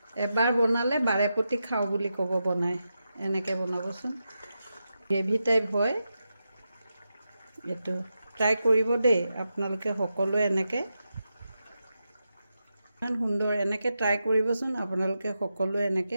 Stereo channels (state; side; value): inverted; both; correlation -0.88